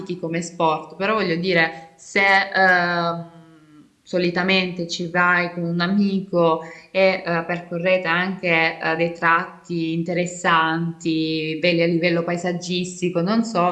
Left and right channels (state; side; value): identical; both; correlation 1.00